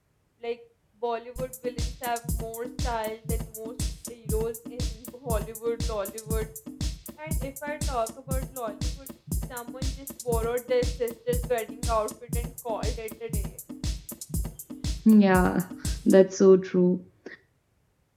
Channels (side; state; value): both; identical; correlation 1.00